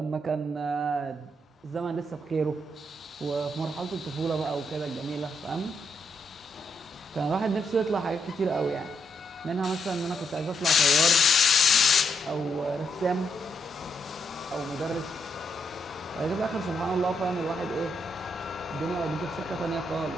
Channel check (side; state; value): both; normal; correlation 0.78